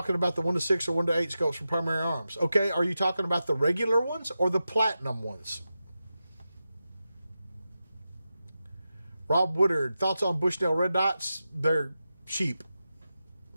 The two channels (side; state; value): both; inverted; correlation -0.91